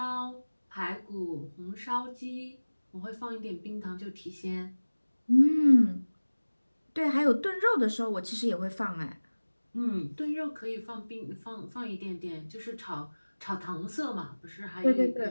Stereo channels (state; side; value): inverted; both; correlation -1.00